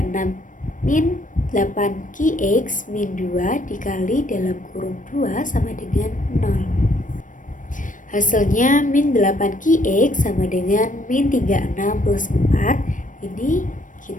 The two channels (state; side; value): late; right; 0.38 ms